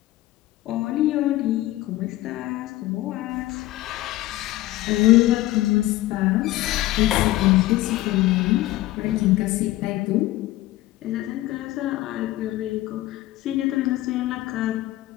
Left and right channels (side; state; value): right; quieter; 16.7 dB